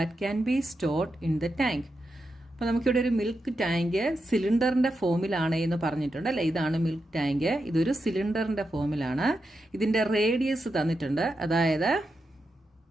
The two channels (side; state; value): both; normal; correlation 0.87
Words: can be stored in the tank. അപ്പോൾ നമുക്കിവിടെ ഒരു മിൽക്ക് ടാങ്ക് സിലിണ്ടറിൻ്റെ ഫോമിലാണ് എന്ന് പറഞ്ഞിട്ടുണ്ട് അല്ലേ. ഇതാണ് മിൽക്ക് ടാങ്ക്. ഇതൊരു സിലിണ്ടറിൻ്റെ ഫോമിലാണ്. ഇതിൻ്റെ റേഡിയസ് തന്നിട്ടുണ്ട്. അതായത്